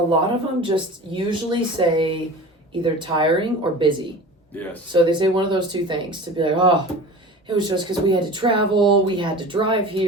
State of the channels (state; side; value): normal; both; correlation 0.36